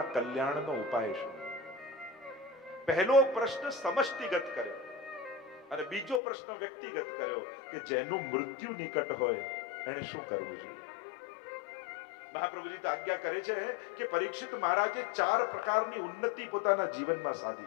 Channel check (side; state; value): right; drops out; at 6.2 s